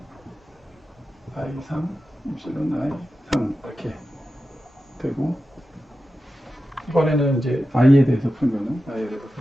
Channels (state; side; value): normal; both; correlation 0.92